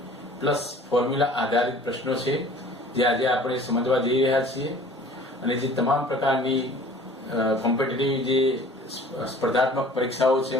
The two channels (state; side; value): normal; both; correlation 0.48